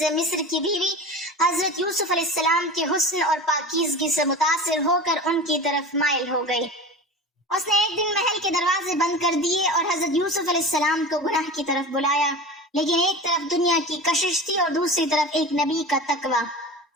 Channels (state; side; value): normal; both; correlation 0.32